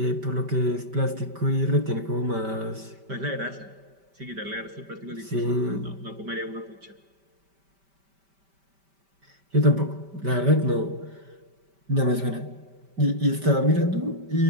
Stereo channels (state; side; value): late; left; 5.1 ms